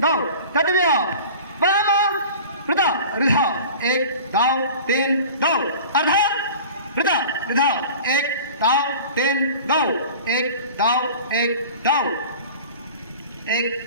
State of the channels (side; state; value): both; inverted; correlation -0.40